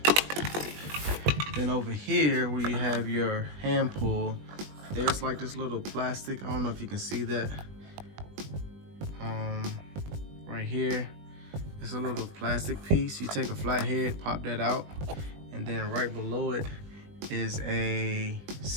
Then over here where you have your hand pull, there's like this little plastic. I don't know if you can see that. Right here, it's a little plastic piece. You take a flathead, pop that out, and then right below it is a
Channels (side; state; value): left; late; 20 ms